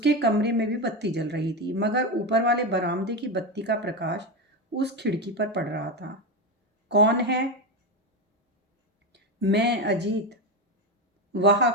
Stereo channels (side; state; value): both; normal; correlation 0.15